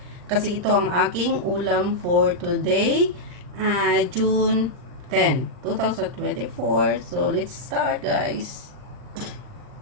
kasi ito ang aking ulam for today, June 10, 2024. So let's start guys.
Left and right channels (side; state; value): left; late; 39 ms